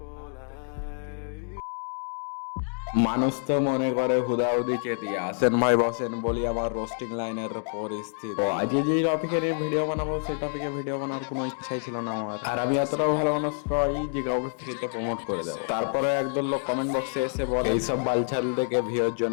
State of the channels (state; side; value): silent; right; digital silence